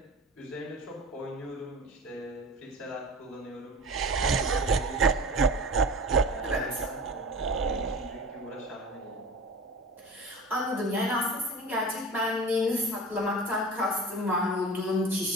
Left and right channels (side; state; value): both; normal; correlation 0.35